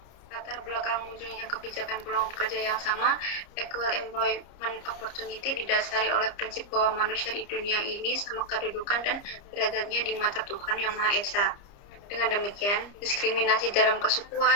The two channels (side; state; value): right; late; 29 ms